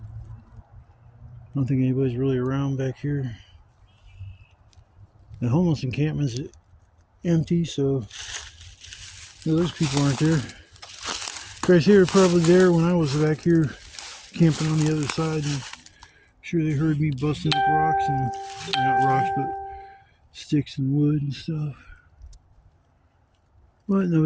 I don't think anybody's really around back here. The homeless encampment's empty, so no, those people aren't there. Guys here are probably there when I was back here camping on the other side, and I'm sure they heard me busting up rocks, and not rocks, but sticks and wood and stuff. But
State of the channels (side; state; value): both; identical; correlation 1.00